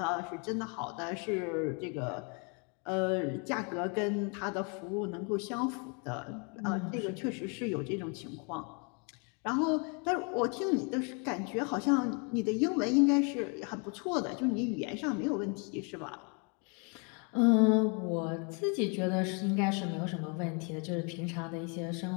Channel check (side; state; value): right; quieter; 35.7 dB